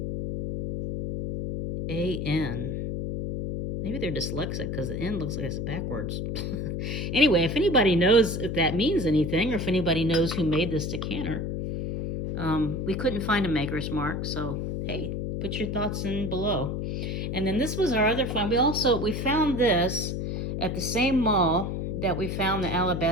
Maybe they're dyslexic because the N looks like it's backwards. Anyway, if anybody knows if that means anything or if anybody knows who made this decanter, we couldn't find a maker's mark, so hey, put your thoughts in below. And then this was our other find. We found this at the same mall that we found the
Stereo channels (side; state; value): left; noise; hum, 3 dB below the sound